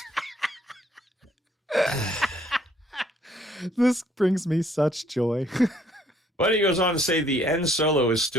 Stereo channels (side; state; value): both; normal; correlation 0.63